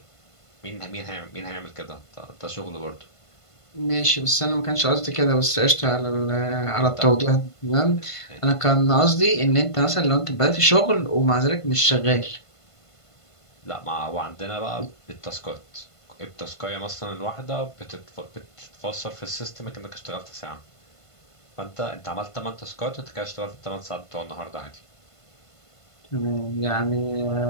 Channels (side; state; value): right; late; 1.5 ms